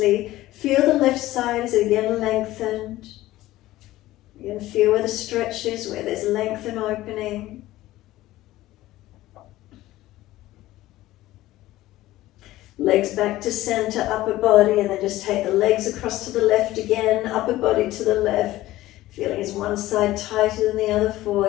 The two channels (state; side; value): quieter; right; 16.2 dB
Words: Feel the left side as it again lengthened. You can feel where the stretch is, where there's length and opening. Legs back to center, upper body, and then just take the legs across to the left again, upper body to the left. Feeling is one side tighter than the other